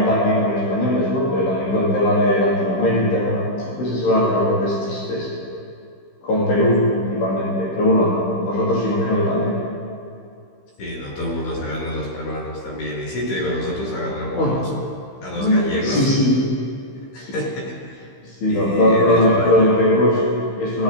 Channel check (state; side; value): late; right; 15 ms